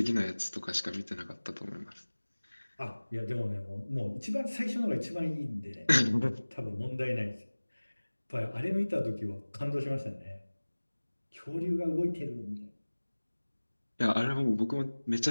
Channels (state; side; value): inverted; both; correlation -1.00